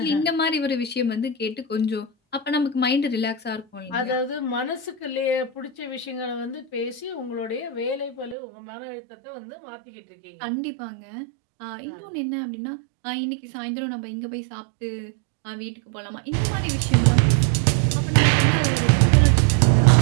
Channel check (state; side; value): drops out; left; at 8.3 s